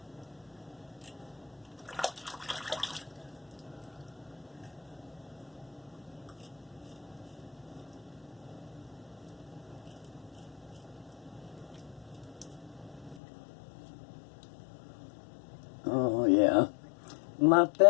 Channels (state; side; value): drops out; right; at 13.2 s